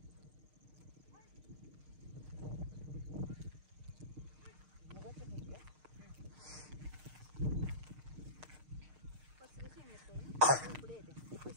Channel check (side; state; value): left; late; 6.5 ms